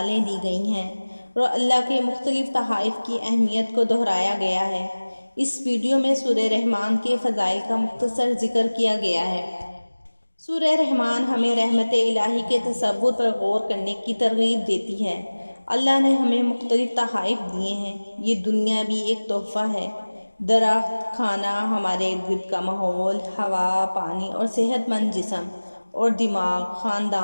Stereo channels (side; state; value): both; inverted; correlation -1.00